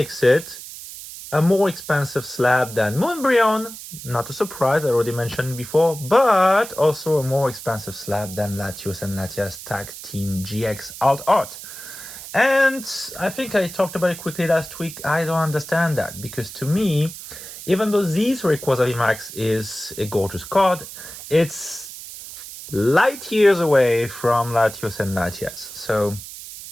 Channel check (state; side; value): noise; right; hiss, 13 dB below the sound